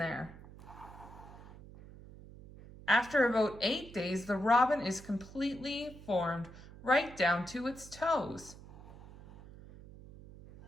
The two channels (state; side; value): noise; right; hum, 17 dB below the sound